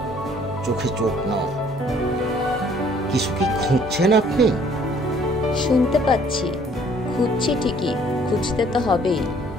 চোখে চোখ নয়। কিছু কি খুঁজছেন আপনি? শুনতে পাচ্ছি, খুঁজছি ঠিকই, খুঁজতে তো হবেই,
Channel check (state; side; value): normal; both; correlation 0.59